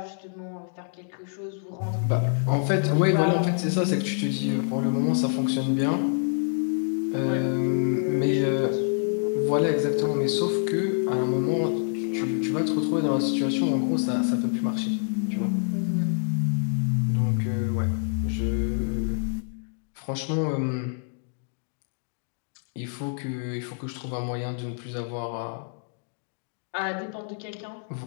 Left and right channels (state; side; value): silent; right; digital silence